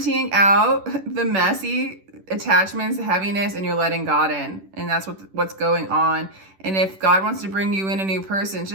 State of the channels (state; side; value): late; left; 10 ms